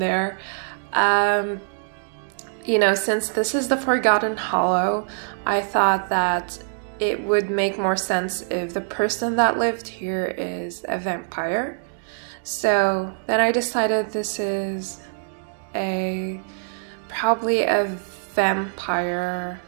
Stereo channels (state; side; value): silent; left; digital silence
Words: You know, since this is the Forgotten Hollow, I thought that it would make more sense if the person that lived here is a vampire. So then I decided this is probably a vampire